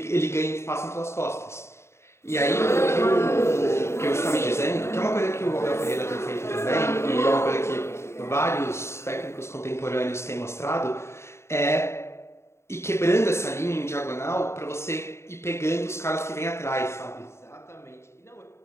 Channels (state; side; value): late; right; 0.13 ms